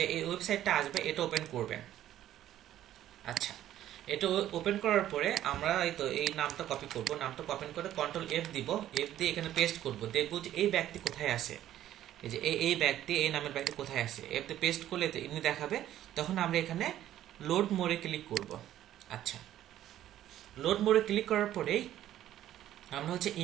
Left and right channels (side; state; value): left; quieter; 12.4 dB